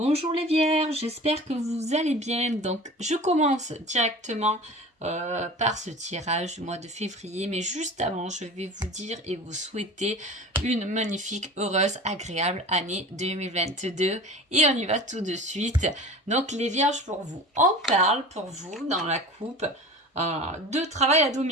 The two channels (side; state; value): both; normal; correlation 0.38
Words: les vierges, j'espère que vous allez bien. Donc je commence directement par ce tirage du mois de février, mais juste avant je vais vous dire et vous souhaiter une magnifique, heureuse, agréable année 2022 et on y va tout de suite. Donc les vierges pour vous, on parle pour vous dans la coupe de travail à